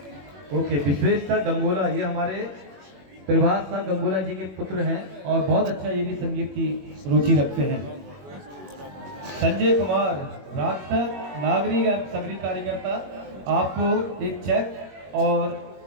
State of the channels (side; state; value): left; late; 21 ms